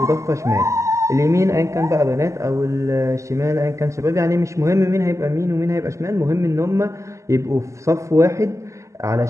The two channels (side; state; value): left; late; 0.15 ms